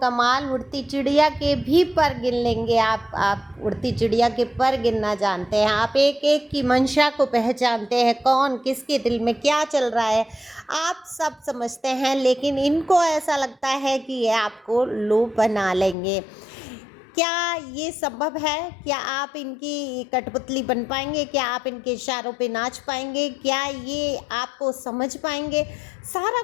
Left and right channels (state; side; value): drops out; right; at 16.0 s